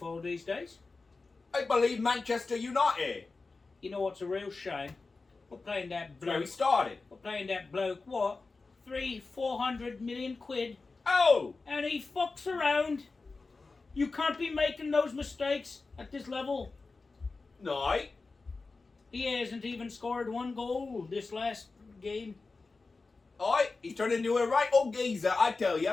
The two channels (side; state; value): right; quieter; 3.9 dB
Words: these days? I believe Manchester United. You know what's a real shame? We're playing that That's where we bloke. started. We're playing that bloke. What? 400 million quid, Oh! and he fucks around. You can't be making those mistakes at this level. No. He hasn't even scored one goal this last game. Aye, he's turned into a right old geezer, I tell